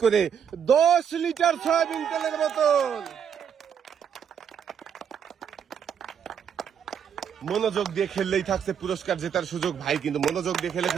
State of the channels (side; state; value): left; quieter; 8.0 dB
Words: করে 10 লিটার সয়াবিন তেলের বোতল। মনোযোগ দিয়ে খেললেই থাকছে পুরস্কার জেতার সুযোগ। ভাই কিন্তু মনোযোগ দিয়ে